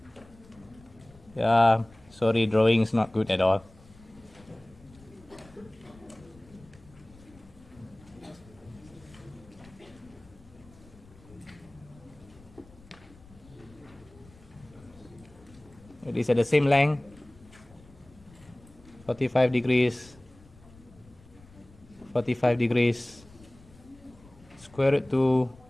Yeah, sorry, drawing is not good at all. These are the same length, 45 degrees, 45 degrees, square root to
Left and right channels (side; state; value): left; noise; rumble, 24 dB below the sound